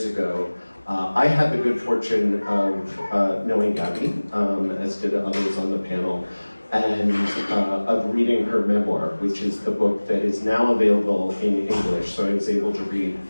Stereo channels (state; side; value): inverted; both; correlation -1.00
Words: ago. I had the good fortune of knowing Gabby, as did others on the panel, and of reading her memoir, which is the book that is now available in English. So I was able to read